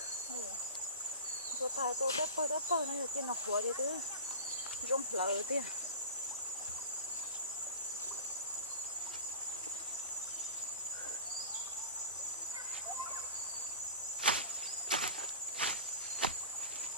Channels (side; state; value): both; inverted; correlation -0.31